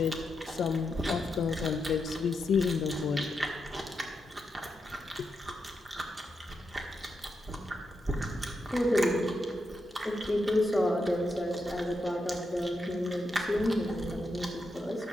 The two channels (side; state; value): both; normal; correlation 0.85